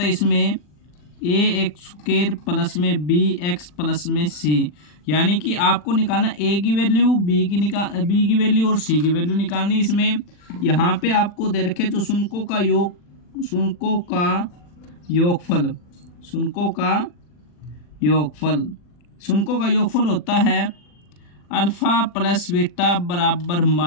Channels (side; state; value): right; late; 40 ms